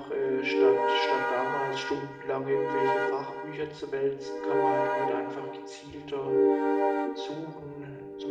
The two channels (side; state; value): both; identical; correlation 1.00